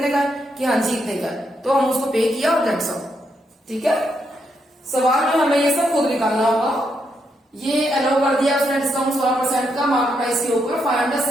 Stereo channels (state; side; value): normal; both; correlation 0.79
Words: का है, कि हाँ जी इतने का है, तो हम उसको पे किया और दैट्स ऑल, ठीक है। सवाल में हमें ये सब खुद निकालना होगा। ये अलाउ कर दिया उसने डिस्काउंट 16% का मार्क प्राइस के ऊपर, फाइंड द